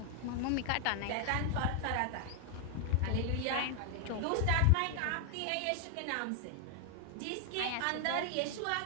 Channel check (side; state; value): both; different; correlation 0.00